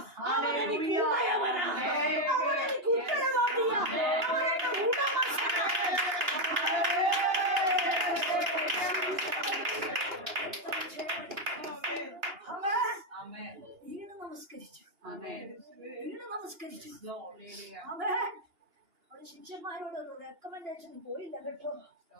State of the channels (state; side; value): late; left; 2.9 ms